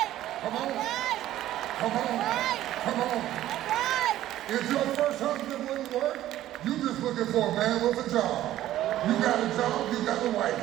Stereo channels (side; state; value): left; quieter; 13.6 dB